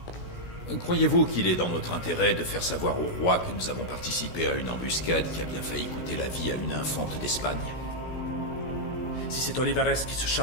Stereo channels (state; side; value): late; right; 16 ms